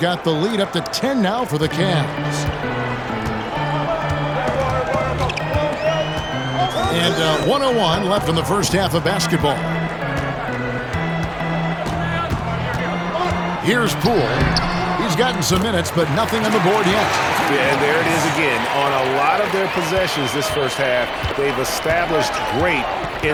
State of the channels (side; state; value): both; identical; correlation 1.00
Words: the lead up to 10 now for the Cavs. And 101 left in the first half of basketball. Here's Poole. He's gotten some minutes, but nothing on the board yet. Yeah, and there it is again. On a lot of their possessions this first half, they've established great